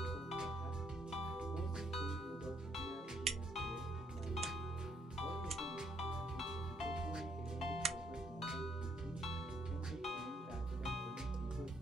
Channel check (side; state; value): both; normal; correlation 0.70